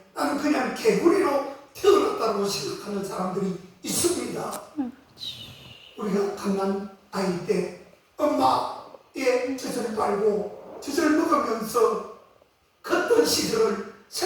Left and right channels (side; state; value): both; identical; correlation 1.00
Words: 나는 그냥 개구리로 태어났다고 생각하는 사람들이 있습니다. 우리가 갓난 아이 때 엄마의 젖을 빨고 젖을 먹으면서 컸던 시절을